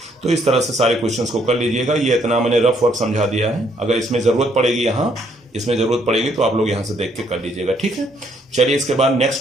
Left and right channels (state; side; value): normal; both; correlation 0.69